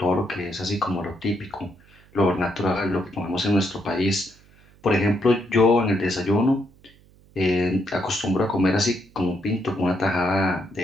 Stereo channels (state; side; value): noise; right; hum, 28 dB below the sound